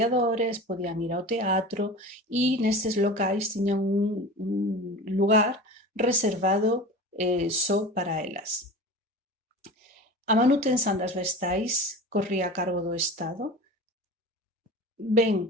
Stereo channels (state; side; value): normal; both; correlation 0.34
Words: podían ir ao teatro e nestes locais tiñan un lugar reservado só para elas. A manutención das vestais corría a cargo do Estado,